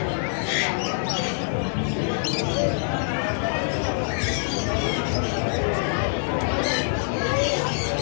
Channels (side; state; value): right; silent; digital silence